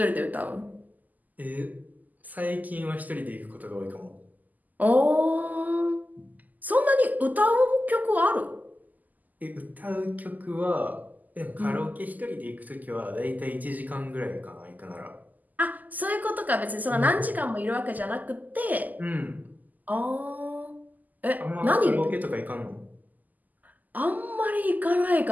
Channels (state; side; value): late; left; 0.082 ms